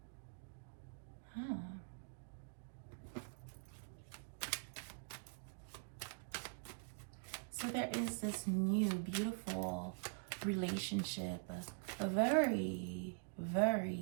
So there is this new, beautiful relationship, a very,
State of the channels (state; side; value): silent; left; digital silence